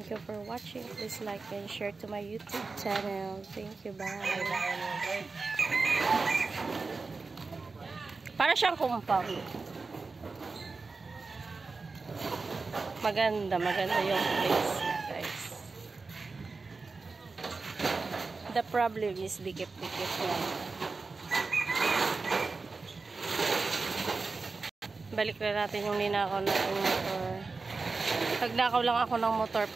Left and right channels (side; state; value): left; quieter; 4.1 dB